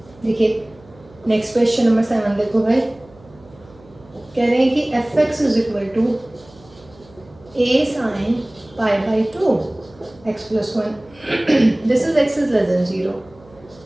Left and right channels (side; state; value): right; noise; hum, 26 dB below the sound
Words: देखिए नेक्स्ट क्वेश्चन नंबर 7 देखो भाई, कह रहे हैं कि f(x) is equal to a sine pi/2 x + 1, this is x is less than 0।